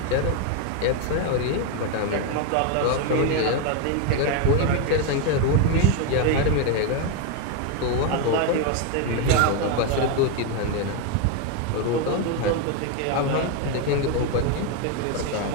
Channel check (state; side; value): different; both; correlation 0.02